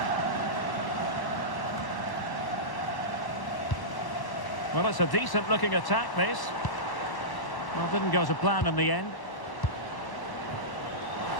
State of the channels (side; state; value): right; late; 1.1 ms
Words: Well, it's a decent-looking attack, this. Well, didn't go to plan in the end.